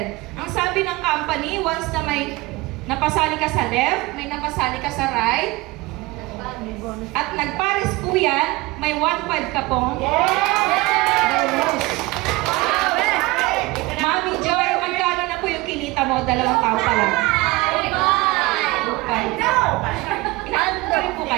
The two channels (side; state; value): left; quieter; 21.8 dB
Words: Ang sabi ng company, once na may napasali ka sa left, may napasali ka sa right, at nagpares po yan, may 1.5 ka pong bonus. Mami Joy, magkano na po yung kinita mo? 2 taon pa lang. 2.5. Inaanto rin po